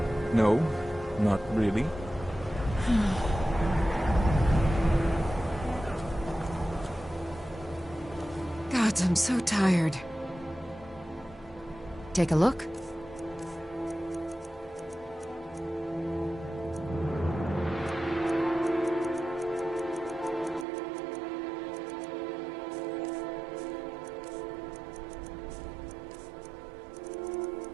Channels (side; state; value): left; drops out; at 20.7 s